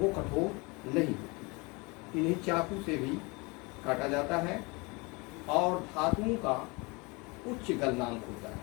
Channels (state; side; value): quieter; right; 27.4 dB